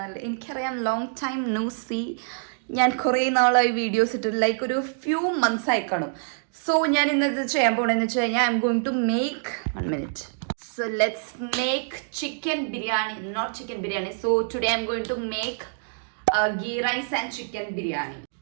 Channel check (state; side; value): silent; left; digital silence